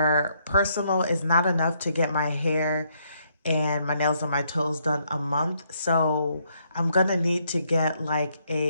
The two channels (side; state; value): both; inverted; correlation -0.73